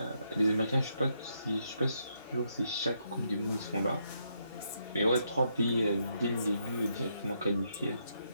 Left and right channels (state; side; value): inverted; both; correlation -0.78